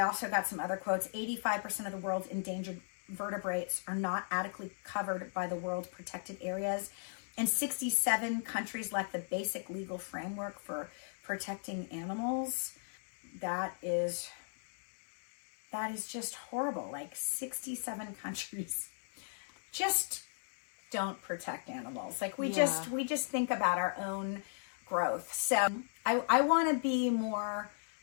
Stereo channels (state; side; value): silent; right; digital silence